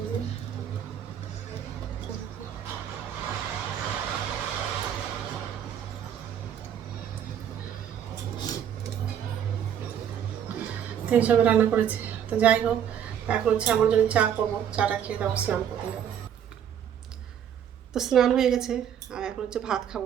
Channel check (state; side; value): quieter; left; 9.2 dB